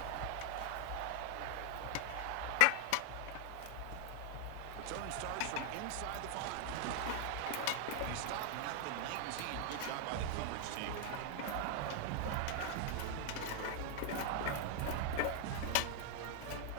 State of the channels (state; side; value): different; both; correlation 0.00